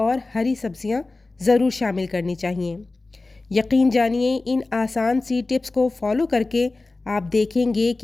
हरी सब्जियां ज़रूर शामिल करनी चाहिए। यकीन जानिए इन आसान सी टिप्स को फॉलो करके आप देखेंगे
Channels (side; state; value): right; quieter; 3.3 dB